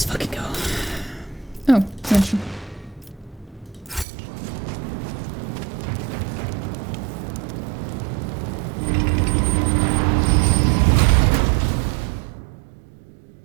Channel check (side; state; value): left; drops out; at 4.0 s